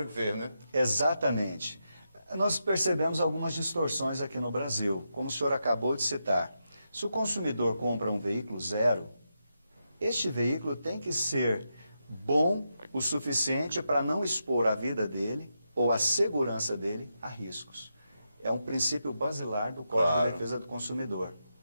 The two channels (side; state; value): both; inverted; correlation -0.85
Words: que fez, né? Exatamente. Nós percebemos algumas distorções aqui no Brasil, como o senhor acabou de citar. Se o consumidor compra um veículo zero, este veículo tem que ser bom o suficiente para não expor a vida dele ou a segurança dele a riscos. É um princípio basilar do Código de Defesa do Consumidor.